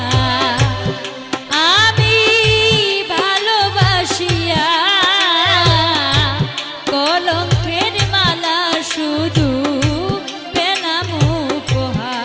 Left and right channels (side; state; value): both; identical; correlation 1.00